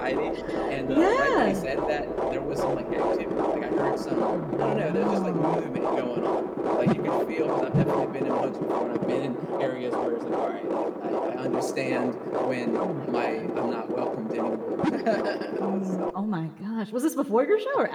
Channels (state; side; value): identical; both; correlation 1.00